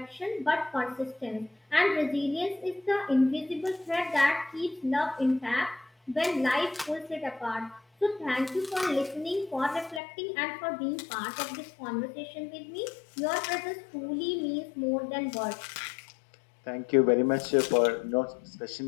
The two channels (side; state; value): right; drops out; at 10.0 s